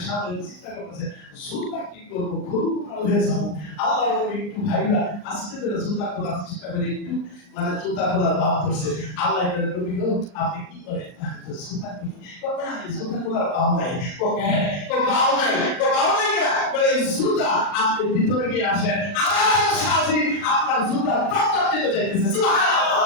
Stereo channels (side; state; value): right; late; 39 ms